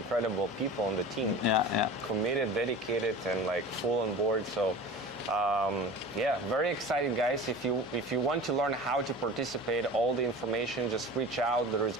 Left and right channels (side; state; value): left; noise; hum, 25 dB below the sound